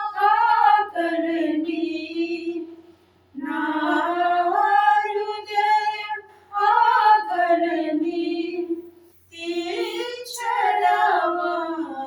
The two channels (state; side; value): identical; both; correlation 1.00